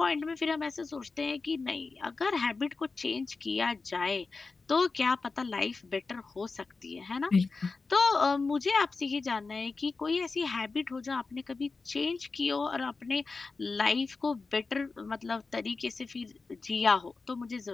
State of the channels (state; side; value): quieter; right; 4.1 dB